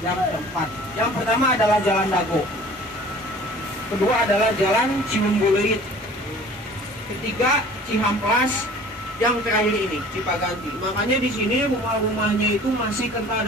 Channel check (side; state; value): both; normal; correlation 0.47